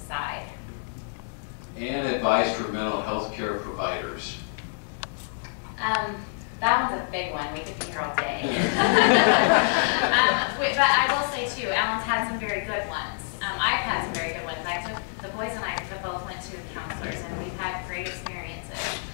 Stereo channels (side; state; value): right; silent; 60 dB below the other